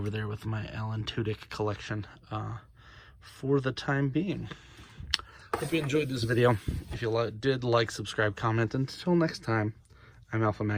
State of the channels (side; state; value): both; identical; correlation 1.00